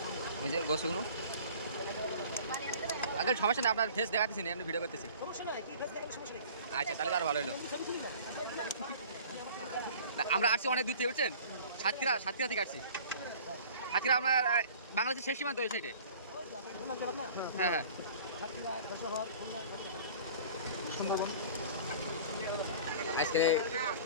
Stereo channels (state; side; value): inverted; both; correlation -0.45